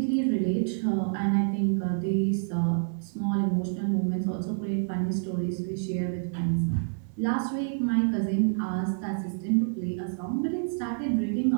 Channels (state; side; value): silent; left; 59 dB below the other